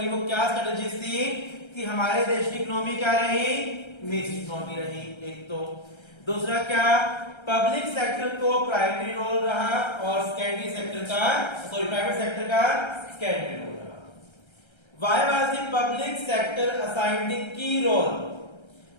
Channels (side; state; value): right; late; 1.3 ms